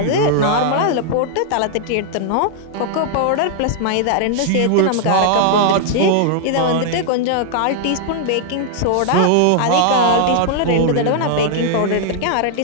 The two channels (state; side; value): different; both; correlation 0.00